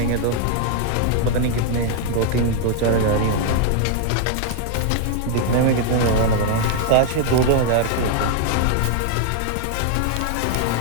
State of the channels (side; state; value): both; different; correlation 0.00